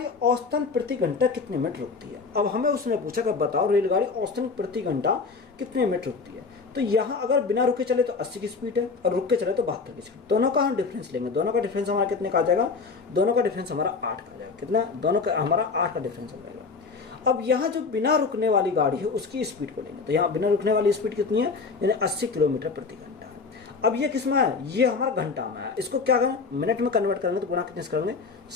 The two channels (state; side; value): quieter; right; 4.6 dB